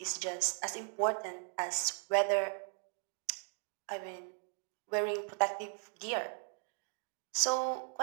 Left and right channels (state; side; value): silent; left; 53 dB below the other